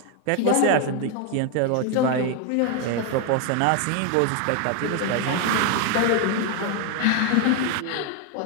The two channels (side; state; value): both; different; correlation 0.01